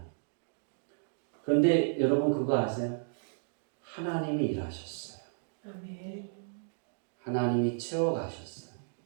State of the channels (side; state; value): left; silent; digital silence